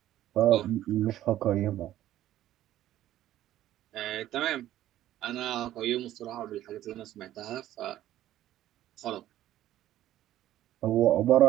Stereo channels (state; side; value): quieter; left; 13.3 dB